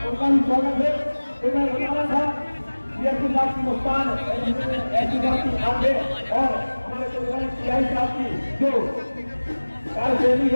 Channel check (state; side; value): inverted; both; correlation -1.00